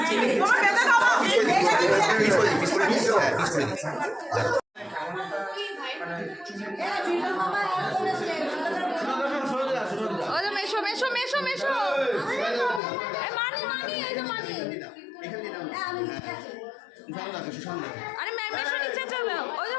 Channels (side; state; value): right; drops out; at 12.8 s